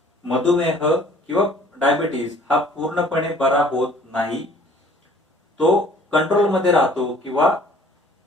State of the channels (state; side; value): normal; both; correlation 0.54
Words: मधुमेह किंवा डायबिटीस हा पूर्णपणे बरा होत नाही, तो कंट्रोलमध्ये राहतो किंवा